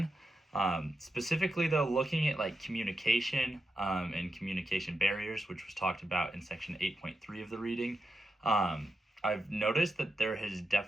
Specifically though, looking at like communication and communication barriers, which was talked about in section 8.3 of the reading, I've noticed that there has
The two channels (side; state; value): both; normal; correlation 0.87